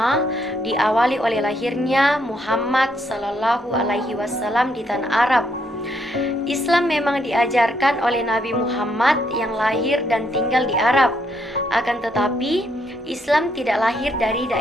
diawali oleh lahirnya Muhammad SAW di tanah Arab. Islam memang diajarkan oleh Nabi Muhammad yang lahir dan tinggal di Arab. Akan tetapi, Islam tidak lahir dari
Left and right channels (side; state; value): both; normal; correlation 0.74